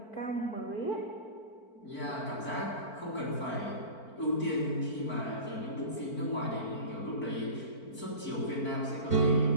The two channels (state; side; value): late; right; 4.5 ms